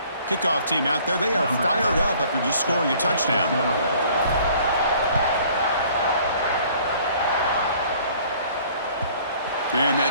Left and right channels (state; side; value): inverted; both; correlation -0.55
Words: Kickoff team out there. They are fired up after just scoring a touchdown. And